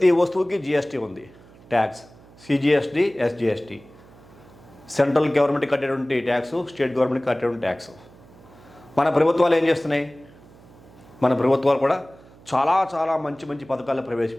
వస్తువుకి జిఎస్టీ ఉంది, tax, CGST, SGST. Central government కట్టేటువంటి ట్యాక్స్, స్టేట్ గవర్నమెంట్ కట్టేటువంటి ట్యాక్స్. మన ప్రభుత్వాలు ఏం చేస్తున్నాయి, మన ప్రభుత్వాలు కూడా చాలా చాలా మంచి మంచి పథకాలు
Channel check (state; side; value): noise; right; hum, 24 dB below the sound